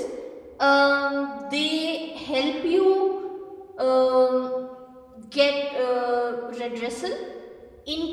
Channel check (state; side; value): identical; both; correlation 1.00